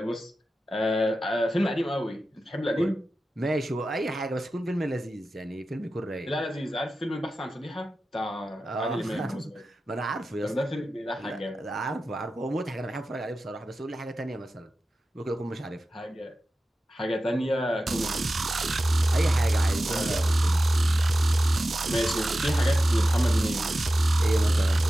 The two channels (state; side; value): normal; both; correlation 0.93